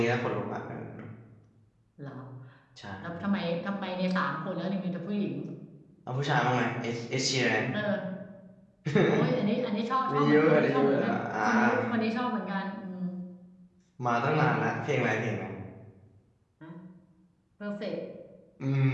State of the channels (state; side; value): identical; both; correlation 1.00